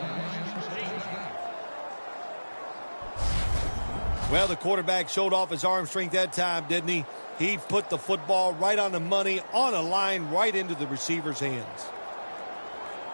Well, the quarterback showed off his arm strength that time, didn't he? He put the football right on the money, on a line, right into the receiver's hands.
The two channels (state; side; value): inverted; both; correlation -1.00